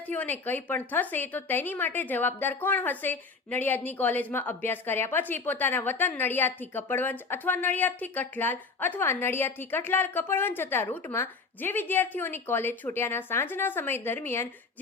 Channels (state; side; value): quieter; right; 4.4 dB